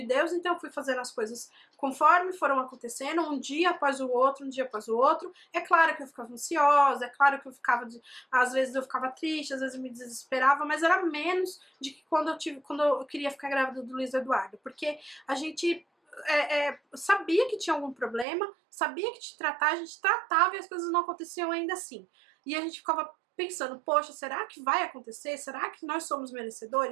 Deus, então eu fui fazendo as coisas conforme foram acontecendo, um dia após o outro, um dia após o outro. É claro que eu ficava ansiosa, é claro que eu ficava, às vezes eu ficava triste, às vezes eu me desesperava, mas era menos de que quando eu queria ficar grávida do Luiz Eduardo, porque a gente sabia que tinha algum problema, sabia que te tratar, a gente tratava e as coisas não aconteciam ainda assim. E a gente ficava pensando, poxa, será que vai acontecer? Será que nós somos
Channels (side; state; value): left; drops out; at 18.2 s